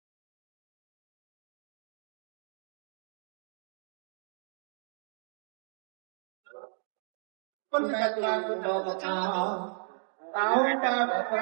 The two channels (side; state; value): left; silent; digital silence